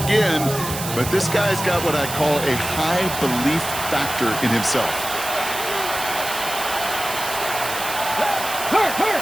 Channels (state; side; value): noise; right; hiss, 7 dB below the sound